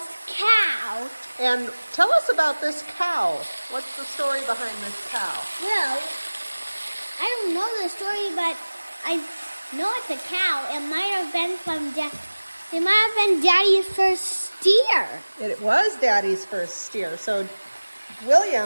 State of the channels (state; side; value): inverted; both; correlation -1.00